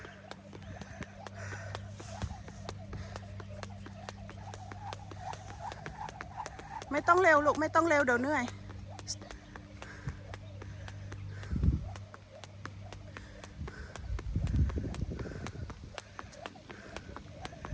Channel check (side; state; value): both; identical; correlation 1.00